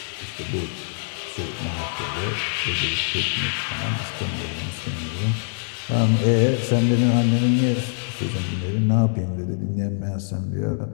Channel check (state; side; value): silent; right; 63 dB below the other